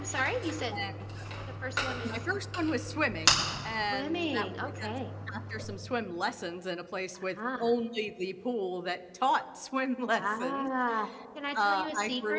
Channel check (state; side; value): identical; both; correlation 1.00